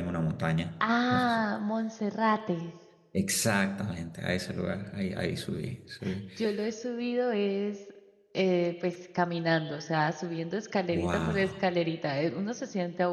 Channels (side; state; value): both; identical; correlation 1.00